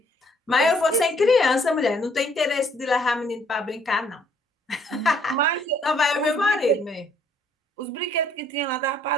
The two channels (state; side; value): normal; both; correlation 0.64